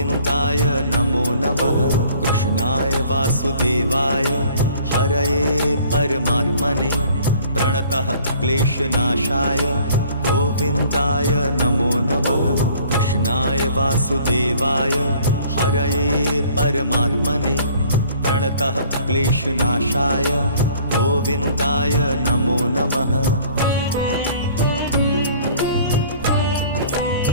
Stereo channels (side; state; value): both; inverted; correlation -0.54